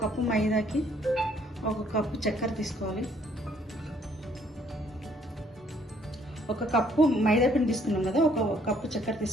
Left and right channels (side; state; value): both; normal; correlation 0.65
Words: కప్పు మైదాకి 1 కప్పు చక్కెర తీసుకోవాలి. 1 కప్పు మైదా పిండి తీసుకున్నాం కదా, 1 కప్పు చక్కెర